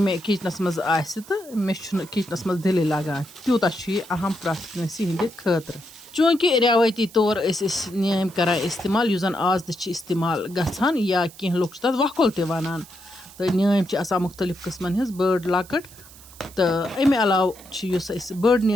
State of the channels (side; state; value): right; noise; hiss, 21 dB below the sound